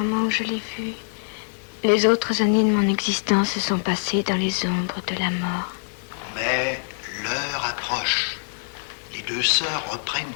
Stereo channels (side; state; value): right; silent; digital silence